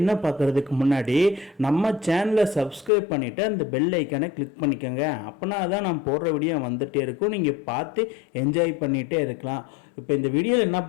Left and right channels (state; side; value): drops out; right; at 2.9 s